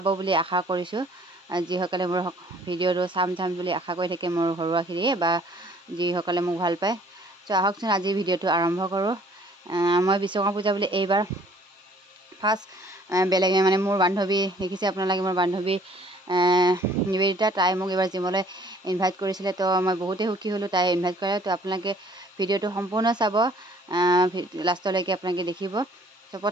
বুলি আশা কৰিছোঁ। যিসকলে মোৰ ভিডিঅ'টো চাম বুলি আশা কৰি থাকে, মোৰ ঘৰুৱাখিনিয়ে বা যিসকলে মোক ভাল পায়। ত' আহকচোন আজি ভিডিঅ'টো আৰম্ভ কৰোঁ। মই বিশ্বকৰ্মা পূজা বুলি এইবাৰ ফাৰ্ষ্ট বেলেগ মানে মোৰ বান্ধৱী দেখিছে আপোনালোকে, মোৰ বান্ধৱী নিবেদিতা, তাই মোক এইবাৰ জিমলৈ ইনভাইট কৰিছিলে। তো মই বহুতেই সুখী হ'লোঁ তাই ইনভাইট কৰে। তো আপোনালোকে ভিডিঅ'টো সম্পূৰ্ণ চাব, লাষ্টলৈকে আপোনালোকে দেখিব। তো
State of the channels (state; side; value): normal; both; correlation 0.57